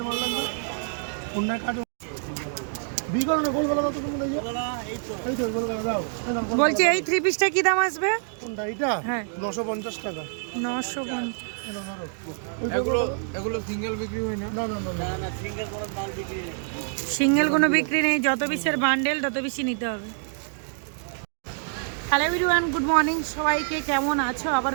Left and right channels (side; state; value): left; silent; digital silence